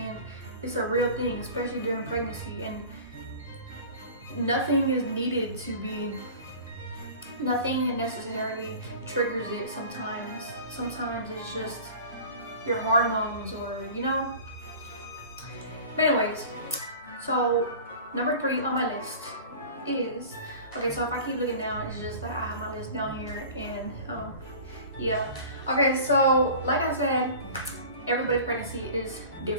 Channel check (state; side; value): inverted; both; correlation -0.40